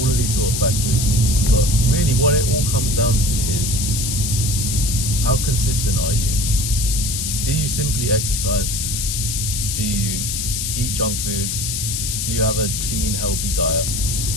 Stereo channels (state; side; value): noise; left; hiss, 2 dB below the sound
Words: of these sort of factors. But really what it all comes down to is, how consistent are you? Do you simply exercise? Do you eat junk food? Do you have a clean, healthy diet?